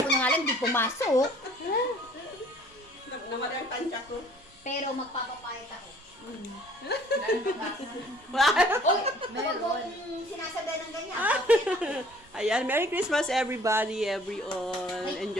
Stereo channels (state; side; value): noise; right; rumble, 29 dB below the sound